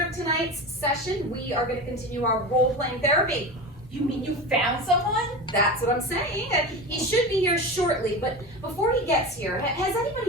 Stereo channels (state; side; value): normal; both; correlation 0.27